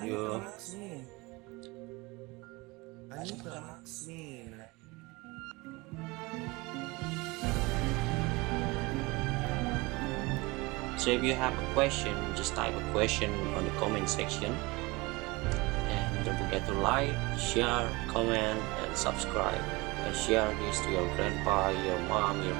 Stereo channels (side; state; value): left; quieter; 23.9 dB